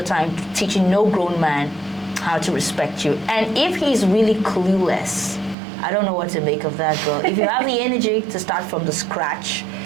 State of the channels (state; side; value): drops out; left; at 5.6 s